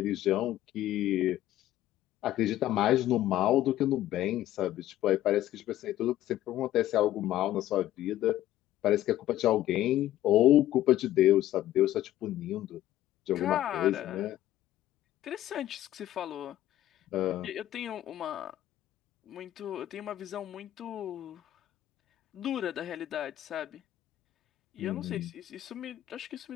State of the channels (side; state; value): right; quieter; 13.6 dB